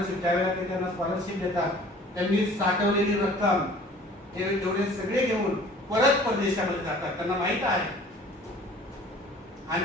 त्यावेळेला ते त्यांना स्कॉलरशिप देतात. त्यांनी साठवलेली रक्कम ते एवढे सगळे घेऊन परत परदेशामध्ये जातात. त्यांना माहित आहे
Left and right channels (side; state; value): both; normal; correlation 0.49